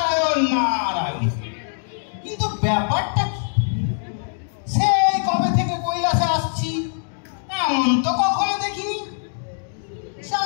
নারায়ণ। কিন্তু ব্যাপারটা কি? সেই কবে থেকে কৈলাসে আসছি, এমন তো কখনো দেখিনি।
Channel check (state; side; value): silent; right; digital silence